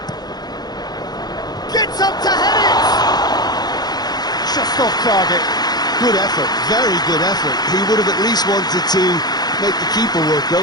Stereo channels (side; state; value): right; late; 0.19 ms